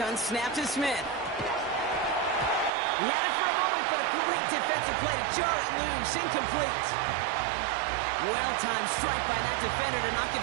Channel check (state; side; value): drops out; left; at 2.7 s